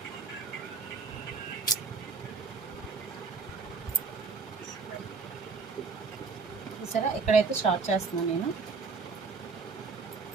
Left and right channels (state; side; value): quieter; left; 4.6 dB